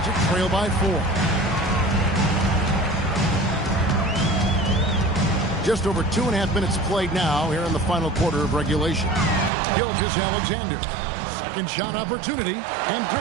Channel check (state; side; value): drops out; left; at 9.5 s